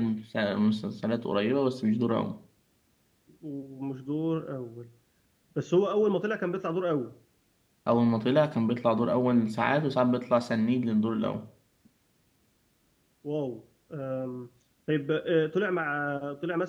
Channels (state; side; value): identical; both; correlation 1.00